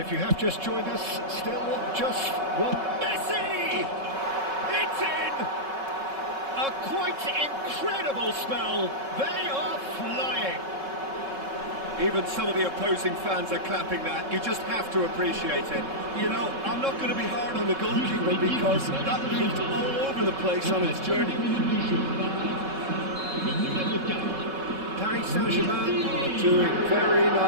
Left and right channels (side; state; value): left; late; 3.7 ms